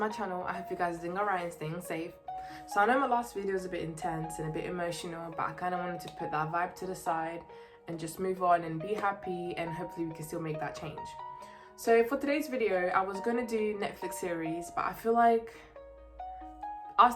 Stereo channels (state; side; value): identical; both; correlation 1.00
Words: channel. I hope you guys are doing alright and staying safe. So I know my last video was a bit intense and a bit emotional, but I kind of wanted to put that vibe to the side and just move on and be happy, and hopefully we can still make that change. So for today's video, I was going to do Netflix series, but I feel like